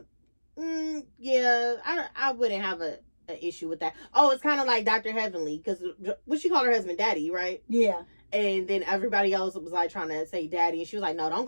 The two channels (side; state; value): both; inverted; correlation -1.00